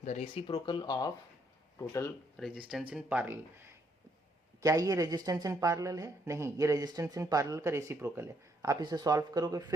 the reciprocal of total resistance in parallel। क्या ये resistance in parallel है, नहीं, ये resistance in parallel का reciprocal है। आप इसे सॉल्व करोगे,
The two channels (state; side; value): normal; both; correlation 0.72